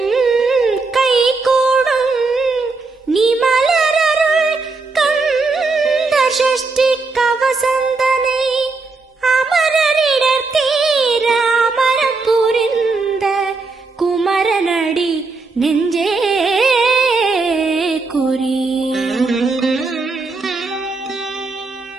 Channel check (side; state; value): left; quieter; 3.9 dB